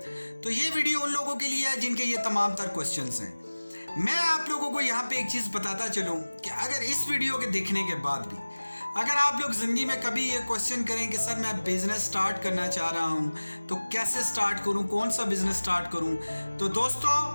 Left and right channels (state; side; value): inverted; both; correlation -1.00